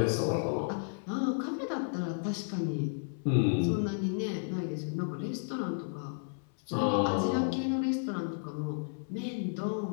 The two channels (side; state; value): right; silent; 56 dB below the other